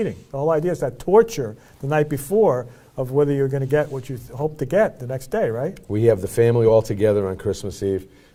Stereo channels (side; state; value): both; identical; correlation 1.00